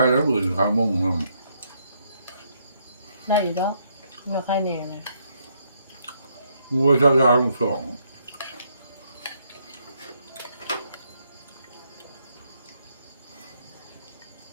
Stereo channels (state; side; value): inverted; both; correlation -0.73